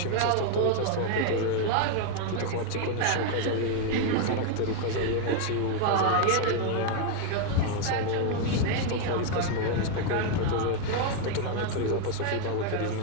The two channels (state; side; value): different; both; correlation 0.00